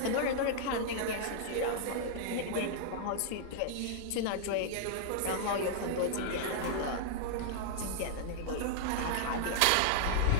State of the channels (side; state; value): both; different; correlation -0.01